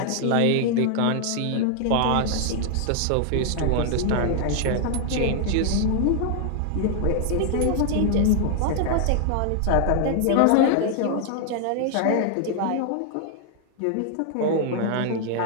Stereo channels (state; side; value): different; both; correlation 0.00